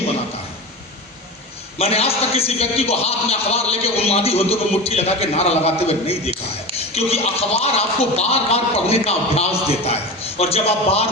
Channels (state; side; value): normal; both; correlation 0.27